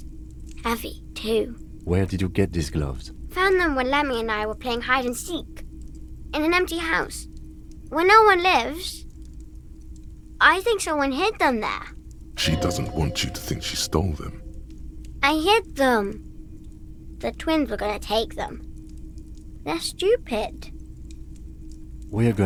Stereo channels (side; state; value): both; identical; correlation 1.00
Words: Heavy, too. Where did you get these gloves? Found them when Lemmy and I were playing hide and seek. In an empty house. Where no one lives. I think someone hid them there. She doesn't want you to think she stole them. I hid them. The twins were gonna take them. They're stupid. We are